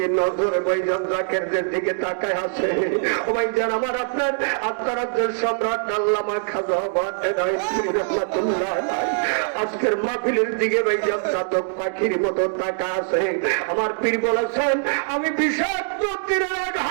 নজরে ভাইজান জাকেরদের দিকে তাকায় আছে। ও ভাই যান আমার আপনার আত্মারাজ্যের সম্রাট আল্লামা খাজা রহমাতুল্লাহ আজকের মাহফিলের দিকে ভাইজান চাতক পাখির মতো তাকা আছে। আমার পীর বলেছেন আমি বিষাক্ত তীরের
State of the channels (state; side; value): silent; left; digital silence